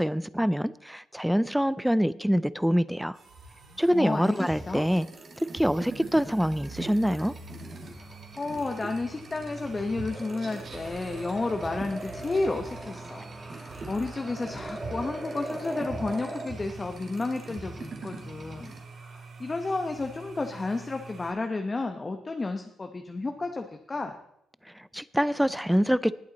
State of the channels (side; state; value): both; normal; correlation 0.97